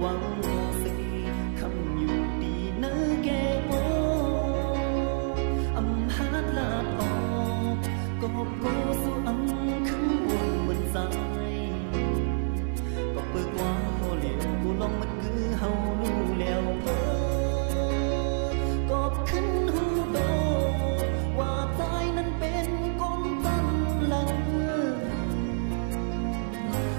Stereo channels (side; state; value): left; silent; 59 dB below the other